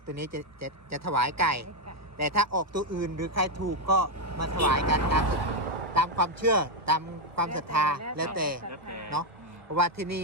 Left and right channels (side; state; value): left; late; 1.4 ms